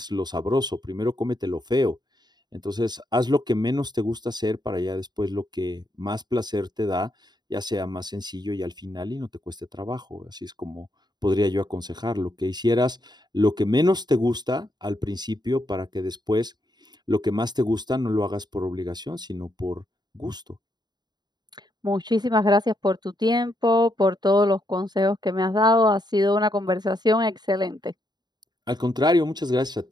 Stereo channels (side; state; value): left; late; 0.20 ms